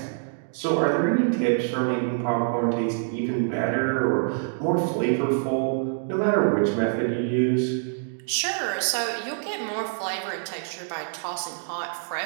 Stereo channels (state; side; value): silent; left; digital silence